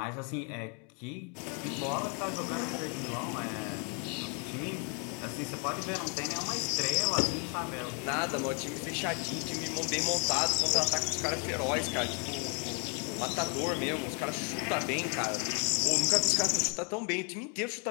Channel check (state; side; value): quieter; right; 37.4 dB